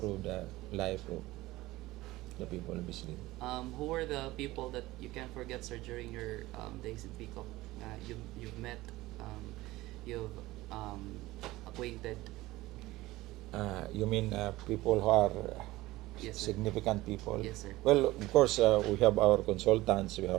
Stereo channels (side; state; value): left; quieter; 18.5 dB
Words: the life of the people of Bislig. Who were the people that you can't forget, sir, during your days in Pickup? You've met, you've acquainted. You mean people who are Yes, sir. significant people? Yes, sir. Well, of course, we have our consultants, we